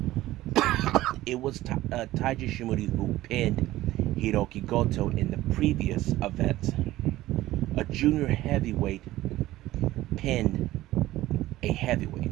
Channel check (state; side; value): quieter; left; 16.0 dB